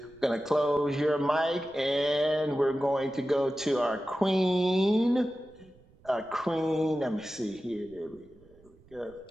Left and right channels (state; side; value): noise; right; rumble, 28 dB below the sound